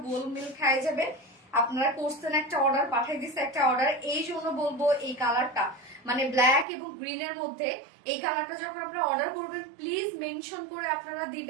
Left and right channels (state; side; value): drops out; left; at 6.7 s